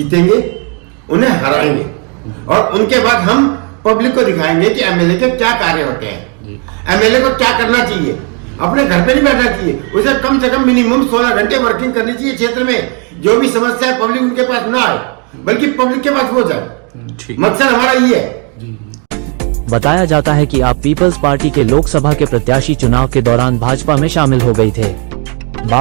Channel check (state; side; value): quieter; left; 36.2 dB